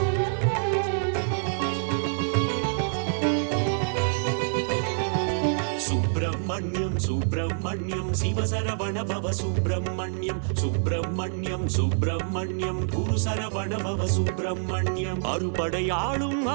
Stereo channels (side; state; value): left; silent; digital silence